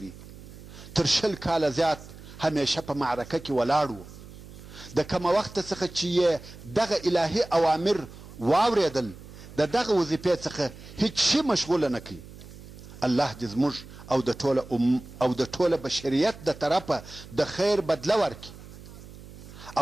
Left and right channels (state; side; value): noise; right; hum, 17 dB below the sound